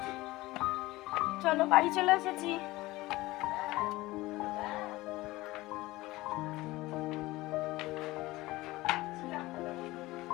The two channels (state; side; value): quieter; right; 19.2 dB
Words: চলো বাড়ি চলে এসেছি।